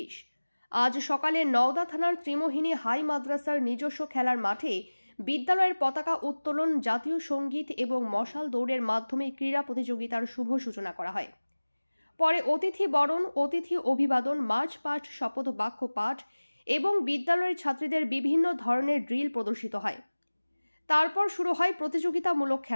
আজ সকালে নওদা থানার ত্রিমোহিনী হাই মাদ্রাসার নিজস্ব খেলার মাঠে বিদ্যালয়ের পতাকা উত্তোলন, জাতীয় সঙ্গীত এবং মশাল দৌড়ের মাধ্যমে ক্রীড়া প্রতিযোগিতার শুভ সূচনা করা হয়। পরে অতিথি বরণ, অতিথি অভিবাদন, মার্চ পাস্ট, শপথ বাক্য পাঠ এবং বিদ্যালয়ের ছাত্রীদের বিভিন্ন ধরনের ড্রিল প্রদর্শিত হয়। তারপর শুরু হয় প্রতিযোগিতামূলক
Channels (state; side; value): inverted; both; correlation -1.00